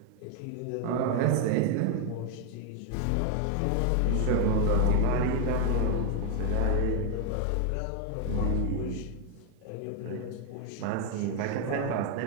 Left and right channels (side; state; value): both; different; correlation 0.00